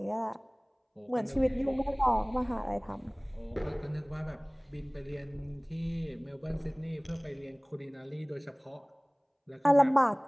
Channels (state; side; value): identical; both; correlation 1.00